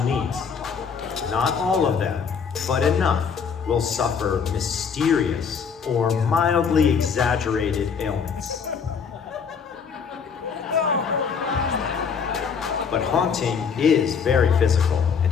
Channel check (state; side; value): quieter; right; 6.3 dB